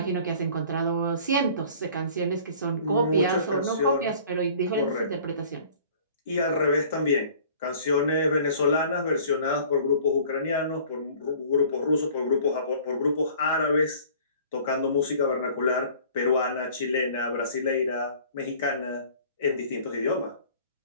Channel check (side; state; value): both; inverted; correlation -0.50